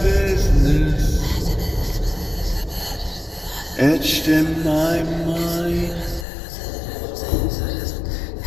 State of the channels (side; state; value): right; drops out; at 6.2 s